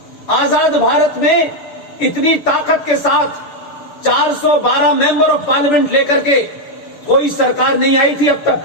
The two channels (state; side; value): late; right; 6.8 ms